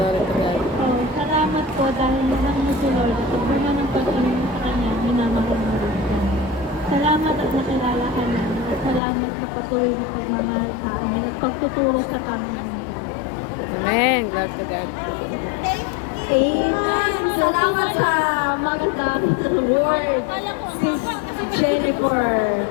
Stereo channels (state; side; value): drops out; right; at 9.0 s